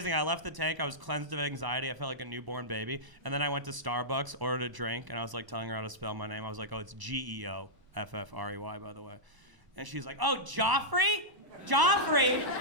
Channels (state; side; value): late; left; 1.0 ms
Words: I left the tank. I was cleansed of anxiety. I felt like a newborn baby. And then I went to Starbucks, ordered a drink, and I was like telling her how to spell my name. I was like, oh, it's Geoffrey, by the way. And she's like, oh, Joffrey? Joffrey?